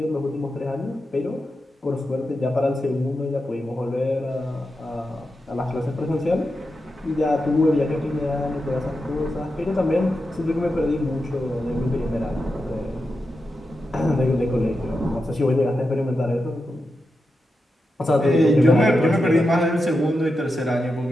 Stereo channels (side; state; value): both; normal; correlation 0.89